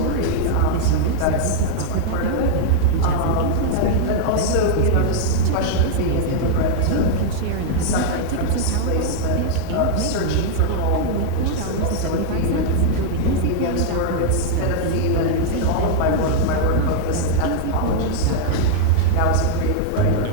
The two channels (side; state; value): both; different; correlation -0.01